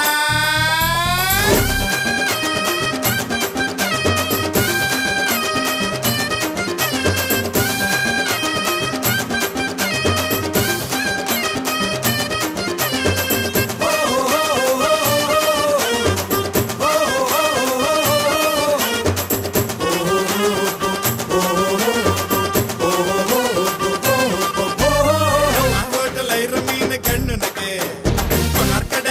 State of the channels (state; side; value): identical; both; correlation 1.00